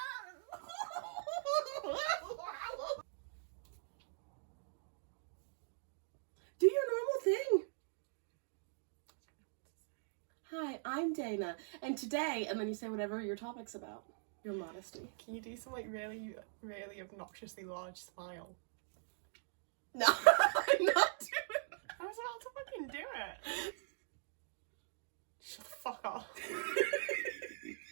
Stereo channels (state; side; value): silent; left; digital silence